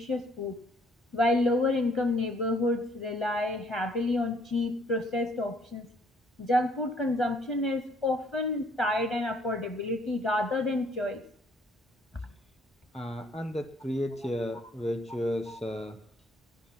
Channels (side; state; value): both; normal; correlation 0.63